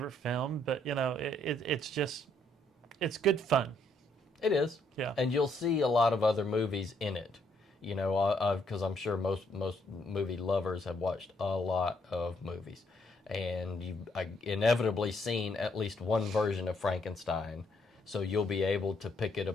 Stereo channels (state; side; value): normal; both; correlation 0.71